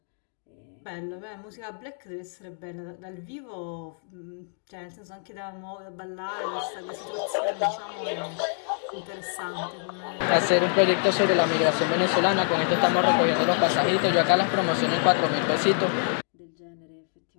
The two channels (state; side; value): silent; right; 61 dB below the other